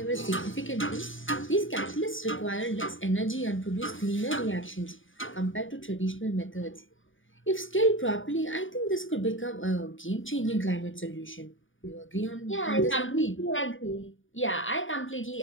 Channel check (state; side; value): late; right; 0.57 ms